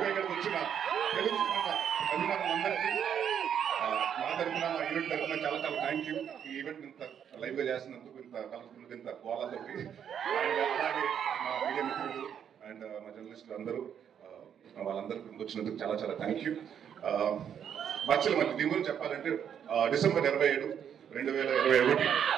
ఇక్కడికి వచ్చిన తెలుగు అభిమానులందరికీ మా తరఫున మా ఈవెంట్ తరఫున చాలా చాలా థ్యాంక్ యూ. ఈ ఈవెంట్ ఇంత లైవ్ గా చేసినందుకు, ఇంత కలర్ఫుల్, ఇంత గోళాతోటి, అండ్ అలాగే మా మీడియా మిత్రులు అండ్ మా జర్నలిస్టులు అందరూ వాళ్ళందరికీ వచ్చినందుకు చాలా చాలా థ్యాంక్ యూ. మధ్యలో మళ్ళీ దీని గురించి చెప్పాలంటే డిసెంబర్ 27, 2021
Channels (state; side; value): quieter; left; 8.5 dB